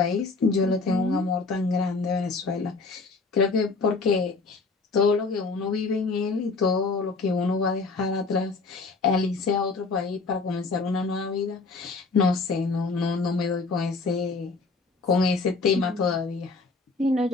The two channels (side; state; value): right; quieter; 4.0 dB